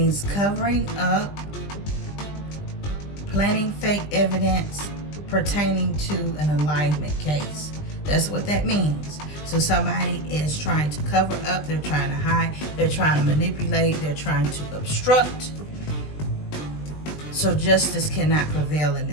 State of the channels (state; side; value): late; right; 20 ms